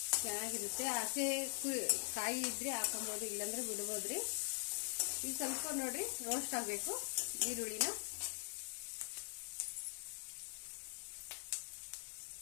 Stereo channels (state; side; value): silent; right; digital silence